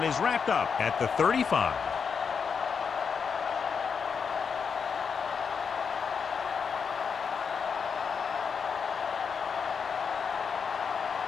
is wrapped up at the 35.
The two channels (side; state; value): right; quieter; 6.2 dB